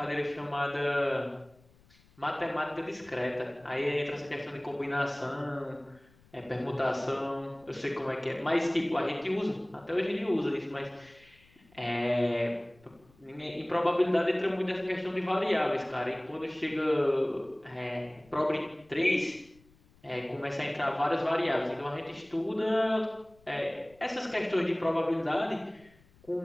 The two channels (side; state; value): left; noise; rumble, 29 dB below the sound